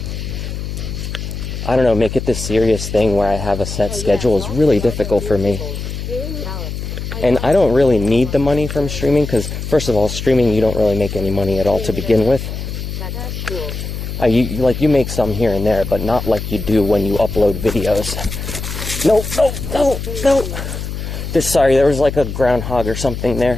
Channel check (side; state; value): left; noise; hum, 6 dB below the sound